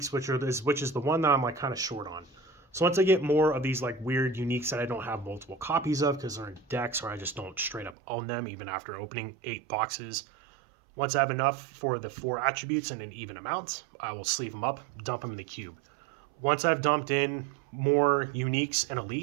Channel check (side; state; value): left; drops out; at 8.0 s